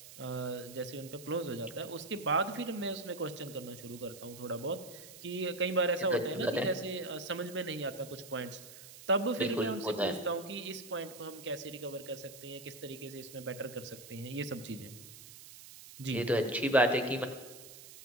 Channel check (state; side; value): noise; right; hiss, 16 dB below the sound